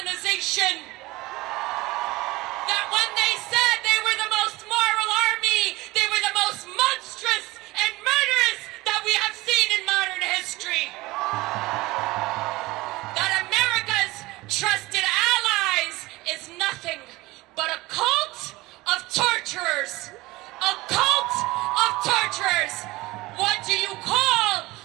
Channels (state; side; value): quieter; left; 20.3 dB